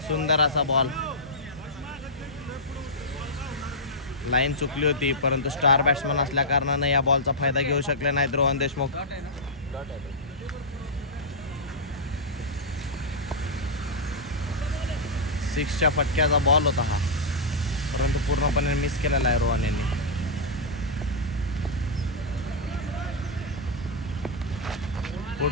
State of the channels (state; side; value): normal; both; correlation -0.09